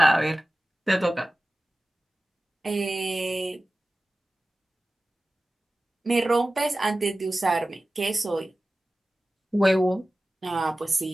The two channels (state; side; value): normal; both; correlation 0.96